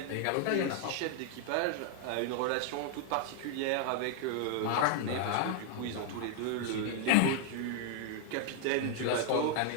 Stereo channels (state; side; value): different; both; correlation 0.00